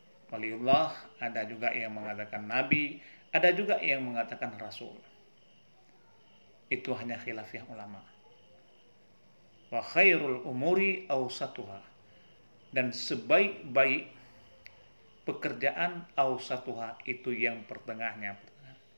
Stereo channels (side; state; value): both; inverted; correlation -1.00